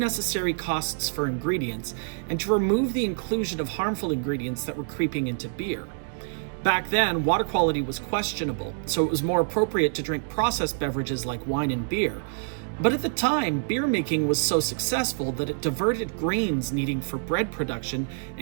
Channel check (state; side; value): silent; left; digital silence